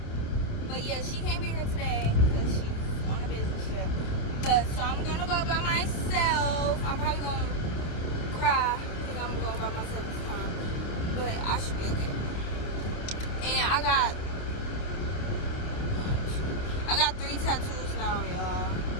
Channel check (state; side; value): late; right; 28 ms